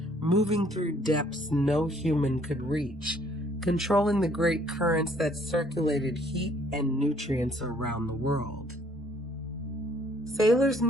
moving through depths no human could reach, controlling the great currents that circulated heat and nutrients around the world. Sailors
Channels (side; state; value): both; normal; correlation 0.62